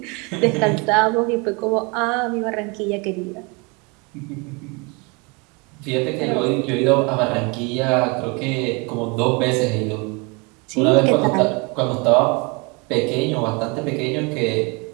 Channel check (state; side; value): quieter; left; 29.3 dB